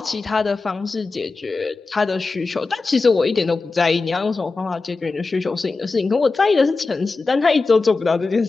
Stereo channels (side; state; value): right; quieter; 3.9 dB